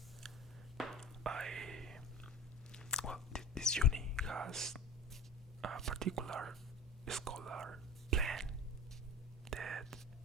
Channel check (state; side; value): normal; both; correlation 0.35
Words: This uni has a particular scholar plan that